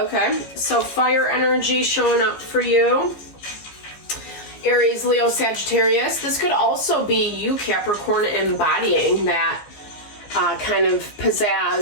so fire energy showing up for you. Aries, Leo, Sagittarius. This could also be you, Capricorn, embodying that kind of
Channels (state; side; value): late; right; 15 ms